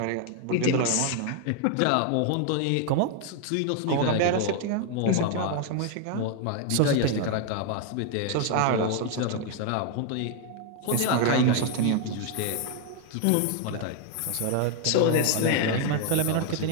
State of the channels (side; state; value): both; different; correlation 0.00